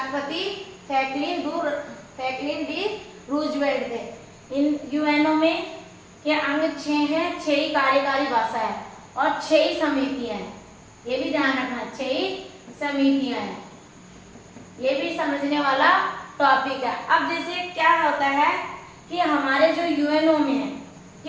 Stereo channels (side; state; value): both; identical; correlation 1.00